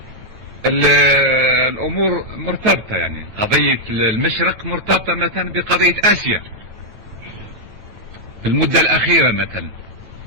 الامور مرتبطه. يعني قضيه المشرق مرتبطه مثلا بقضيه اسيا في المده الاخيره. مثلا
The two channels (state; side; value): late; left; 9.0 ms